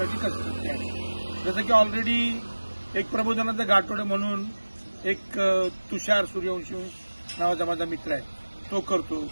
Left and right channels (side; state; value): both; inverted; correlation -1.00